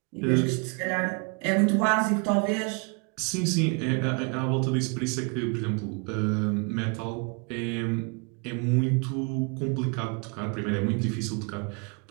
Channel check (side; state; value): left; quieter; 33.8 dB